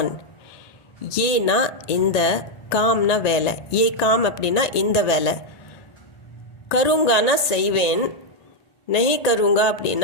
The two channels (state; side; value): late; right; 1.8 ms